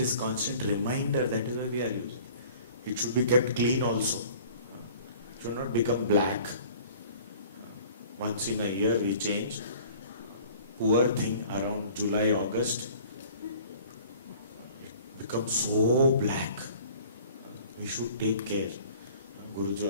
constant reminder, that is why we are using. It should be kept clean also. It should not become black. Once in a year we change. Poor thing, around July, August, it becomes so black. We should take care. Guruji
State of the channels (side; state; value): both; inverted; correlation -0.49